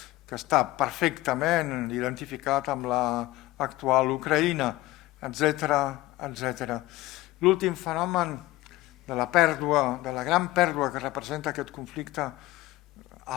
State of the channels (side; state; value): right; quieter; 18.1 dB